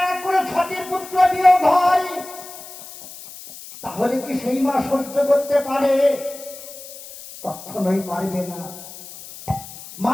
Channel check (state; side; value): noise; left; hiss, 15 dB below the sound